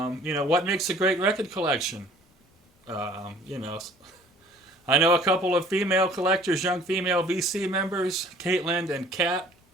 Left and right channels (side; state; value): both; normal; correlation 0.52